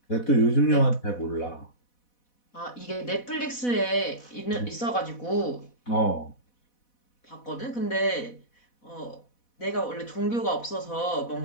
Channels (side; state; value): right; late; 4.1 ms